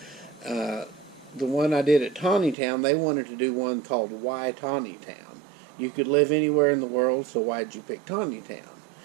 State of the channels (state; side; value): drops out; left; at 2.6 s